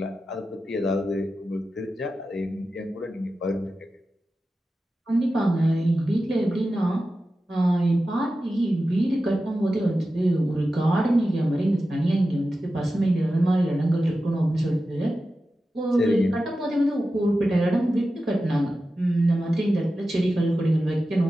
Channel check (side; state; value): both; normal; correlation 0.93